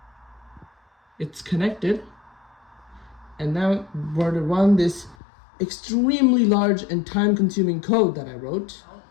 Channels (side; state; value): right; drops out; at 5.2 s